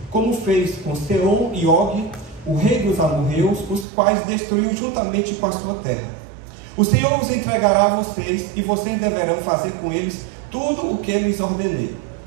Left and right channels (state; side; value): drops out; left; at 3.9 s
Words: como fez com Sehon e Og, o rei dos amorreus, os quais destruiu juntamente com a sua terra. O Senhor os entregará a vocês, e vocês deverão fazer com eles tudo o que eu lhes ordenei.